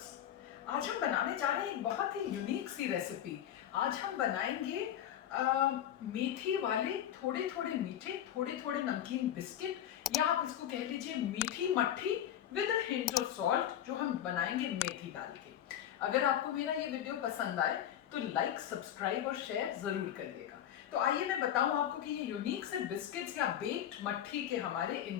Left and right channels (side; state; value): right; quieter; 10.8 dB